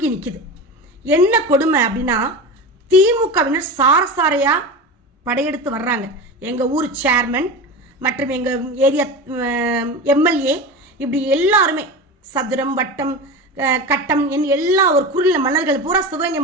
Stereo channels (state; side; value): normal; both; correlation 0.27